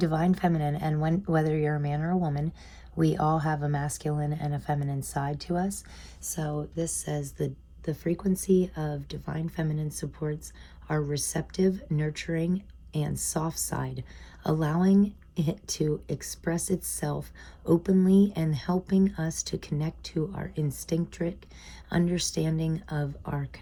Feminine, and whether you're a man or a woman, we all have a masculine and a feminine side to us. So this says the frequency of Divine Feminine supports our receptive, nurturing, and soft side, allowing it to express itself openly and helping us to connect to our instinctive understanding of our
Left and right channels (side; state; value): both; identical; correlation 1.00